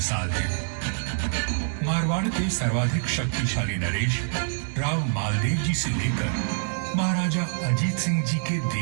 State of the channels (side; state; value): left; silent; 61 dB below the other